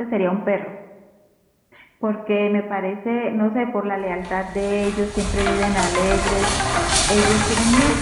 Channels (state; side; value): identical; both; correlation 1.00